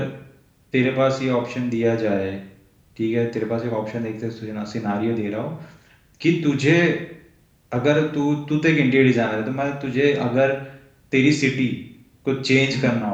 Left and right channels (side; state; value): both; identical; correlation 1.00